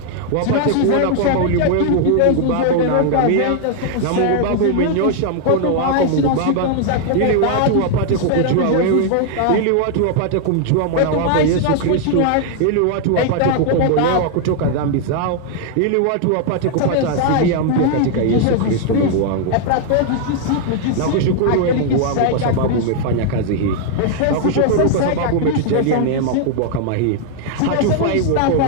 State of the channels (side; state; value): both; different; correlation 0.00